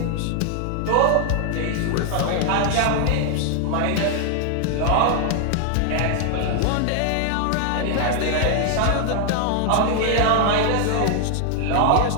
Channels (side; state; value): both; different; correlation 0.00